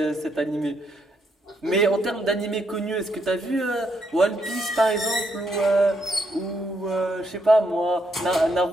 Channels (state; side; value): normal; both; correlation 0.77